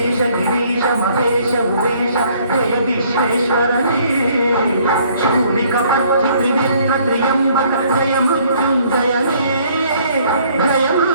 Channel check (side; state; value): both; inverted; correlation -0.62